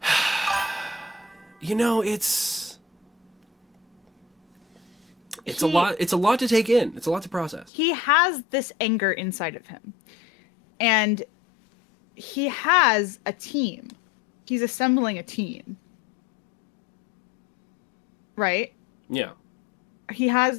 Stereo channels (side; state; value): right; drops out; at 7.7 s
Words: You know, it's a lot. It's a lot to take in. It's a lot to process. He has this anger inside of him, and he has a team. He's assembling a team, right? Yeah. He has